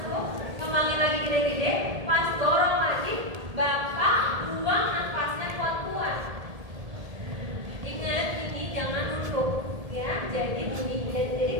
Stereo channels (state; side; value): late; left; 1.7 ms